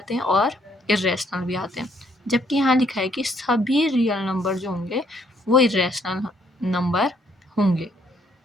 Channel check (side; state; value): both; normal; correlation 0.68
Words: हैं और इरेशनल भी आते हैं, जबकि यहाँ लिखा है कि सभी रियल नंबर जो होंगे वो इरेशनल नंबर होंगे,